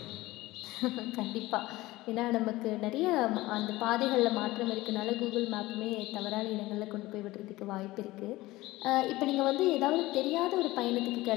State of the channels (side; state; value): right; quieter; 18.7 dB